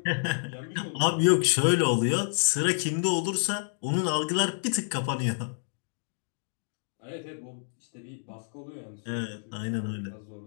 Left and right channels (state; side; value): silent; right; digital silence